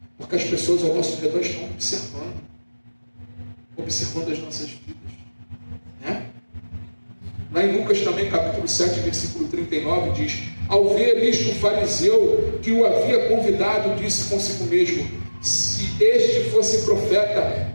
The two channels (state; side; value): inverted; both; correlation -1.00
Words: porque as pessoas ao nosso redor estão observando as nossas vidas, né? Lá em Lucas também, capítulo 7, versículo 39, diz: ao ver isto, o fariseu que o havia convidado disse consigo mesmo: se este fosse profeta,